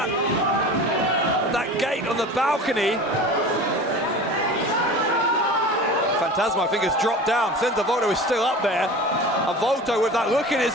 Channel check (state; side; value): normal; both; correlation 0.36